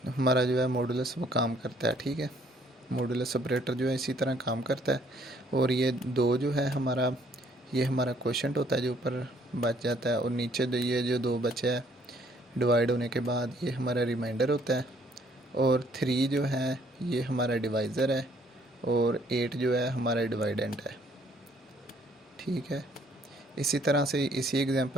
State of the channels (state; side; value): normal; both; correlation 0.64